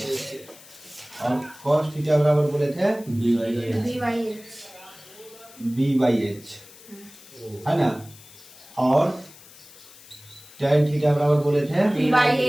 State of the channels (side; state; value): left; noise; hiss, 21 dB below the sound